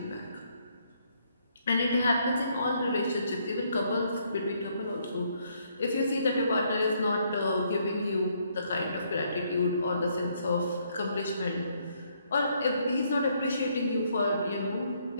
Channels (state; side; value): inverted; both; correlation -0.71